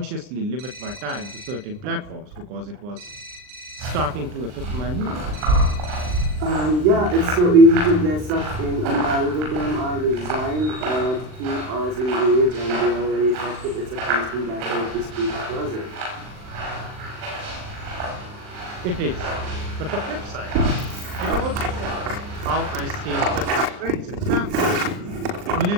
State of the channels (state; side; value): late; left; 39 ms